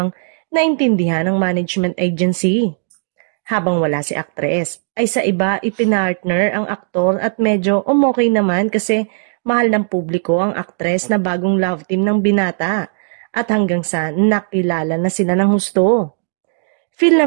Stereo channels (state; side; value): silent; left; digital silence